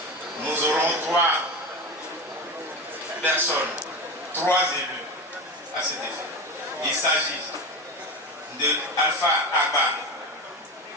Nous aurons 3 personnes, 3 élus à cet effet. Il s'agit de Alpha Agba,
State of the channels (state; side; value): normal; both; correlation 0.23